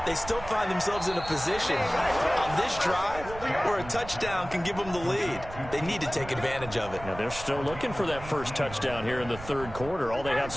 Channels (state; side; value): noise; right; rumble, 13 dB below the sound